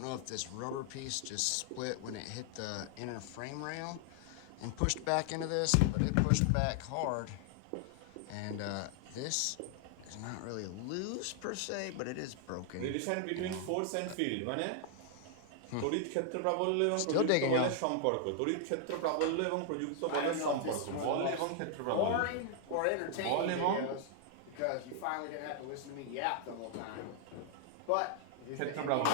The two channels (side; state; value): both; different; correlation 0.00